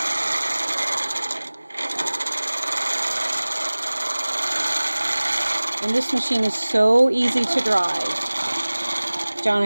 And this machine is so easy to drive. John,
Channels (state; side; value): inverted; both; correlation -1.00